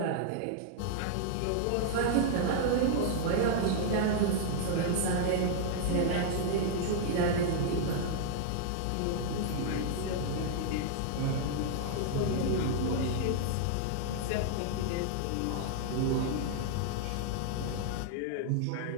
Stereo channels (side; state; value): both; different; correlation -0.01